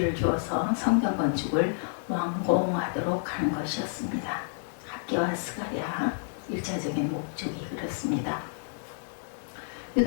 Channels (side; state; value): right; silent; digital silence